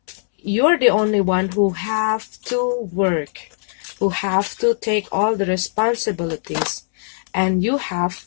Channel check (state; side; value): silent; right; 65 dB below the other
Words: you're the only one who have to work, who have to take all the responsibilities, and you have,